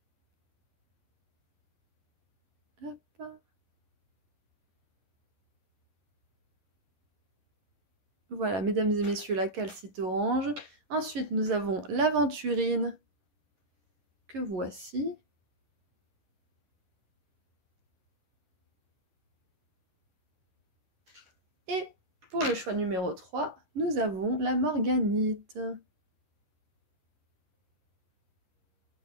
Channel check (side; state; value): left; late; 11 ms